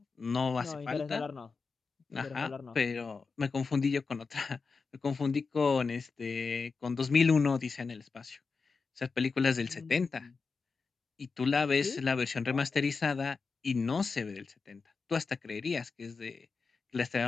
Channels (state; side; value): quieter; right; 4.7 dB